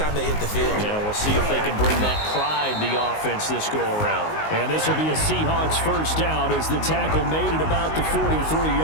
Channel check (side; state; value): right; late; 19 ms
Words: they hit the field. Yeah, we'll see if they can bring that pride to the offense this go-around. And this will be a Seahawks first down as the tackle made it about the